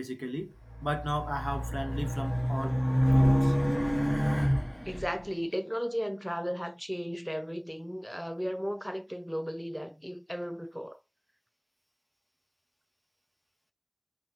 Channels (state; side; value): identical; both; correlation 1.00